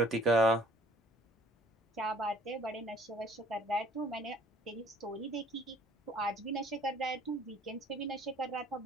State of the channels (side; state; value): both; normal; correlation 0.56